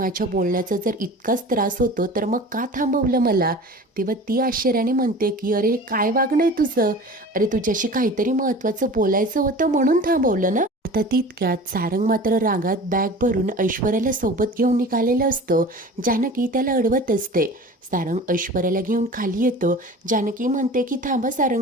बोलण्याचा जर इतकाच त्रास होतो तर मग का थांबवलं मला? तेव्हा ती आश्चर्याने म्हणते की अरे काय वागणं आहे तुझं? अरे तुझ्याशी काहीतरी महत्त्वाचं बोलायचं होतं म्हणून थांबवलं ना. आता तितक्यात सारंग मात्र रागात बॅग भरून ऐश्वर्याला सोबत घेऊन निघालेलं असतो. जानकी त्याला अडवत असते. सारंग ऐश्वर्याला घेऊन खाली येतो. जानकी म्हणते की थांबा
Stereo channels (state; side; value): normal; both; correlation 0.38